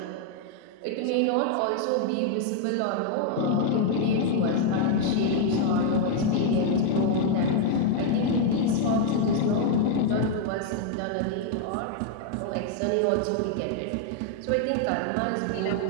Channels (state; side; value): different; both; correlation 0.00